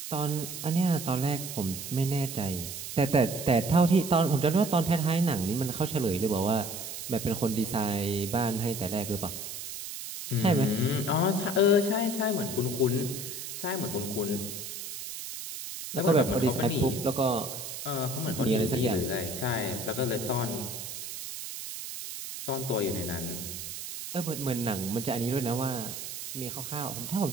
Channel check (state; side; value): noise; right; hiss, 8 dB below the sound